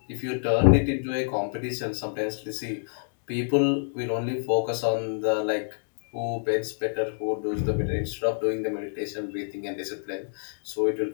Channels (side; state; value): right; silent; digital silence